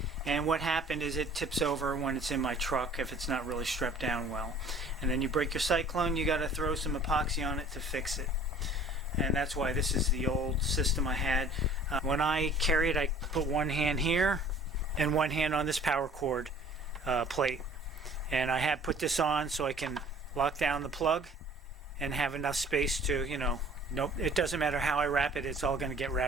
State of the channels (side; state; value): both; normal; correlation 0.50